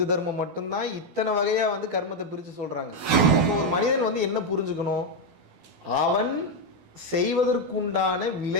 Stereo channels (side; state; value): left; late; 12 ms